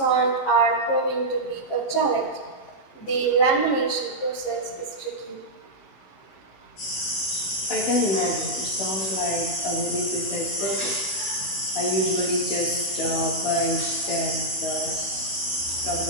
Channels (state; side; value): late; right; 16 ms